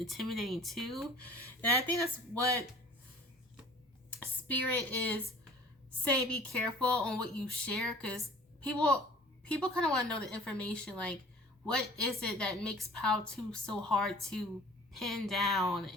too. And I think that's what Spirit is saying. Be careful on what you share, because people kind of want to know the information. Like, what is it that makes POW 2 so hard to pin down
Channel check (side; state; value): both; normal; correlation 0.48